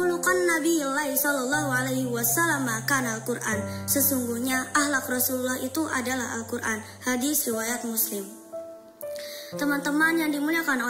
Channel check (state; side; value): identical; both; correlation 1.00